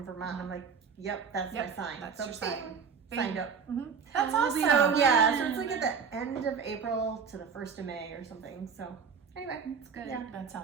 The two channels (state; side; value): quieter; left; 6.2 dB